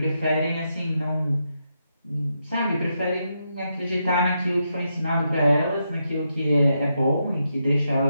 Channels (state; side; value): inverted; both; correlation -0.82